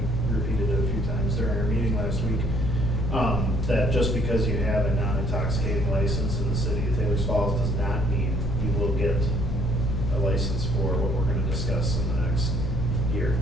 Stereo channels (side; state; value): left; noise; hum, 6 dB below the sound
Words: repeated it a few times during our meeting last week. That just because you have a non-intoxicating license in the city of Taylor Falls does not mean you will get a license for what we're going to discuss in the next year.